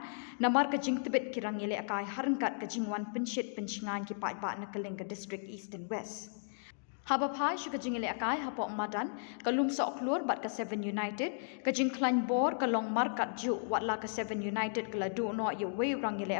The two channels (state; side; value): silent; right; digital silence